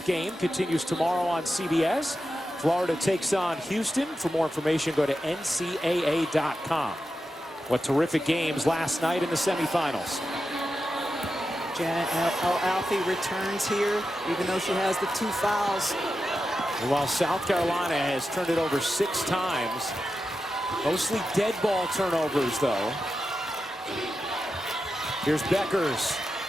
game continues tomorrow on CBS. Florida takes on Houston. For more information, go to ncaa.com. What terrific games last night in the semifinals. Janet El-Alfi returns here, even though she has the 2 fouls. And while South Carolina has turned it over 6 times, mostly dead ball turnovers, though. Here's Bueckers.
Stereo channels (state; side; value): normal; both; correlation 0.90